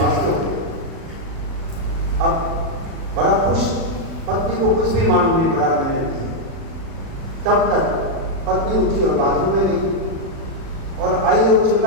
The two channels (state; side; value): late; left; 36 ms